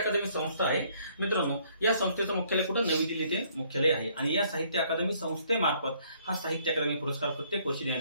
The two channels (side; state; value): both; inverted; correlation -0.64